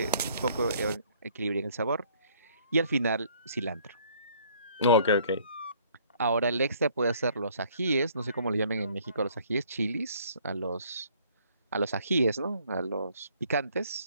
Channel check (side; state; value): both; inverted; correlation -0.61